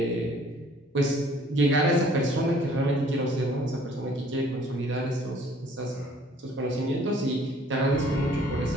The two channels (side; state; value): both; normal; correlation 0.57